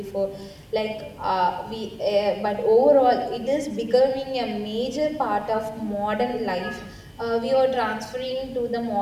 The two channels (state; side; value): identical; both; correlation 1.00